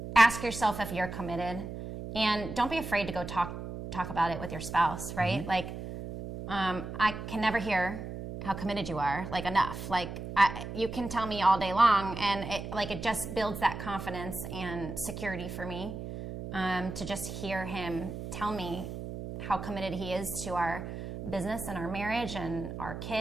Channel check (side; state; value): right; noise; hum, 8 dB below the sound